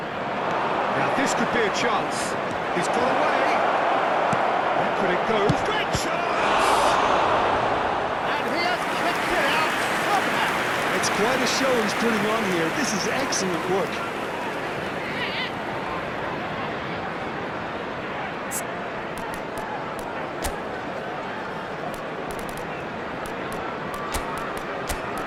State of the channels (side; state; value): both; identical; correlation 1.00